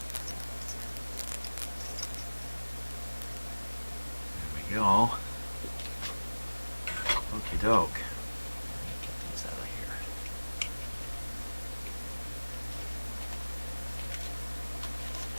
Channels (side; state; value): both; inverted; correlation -1.00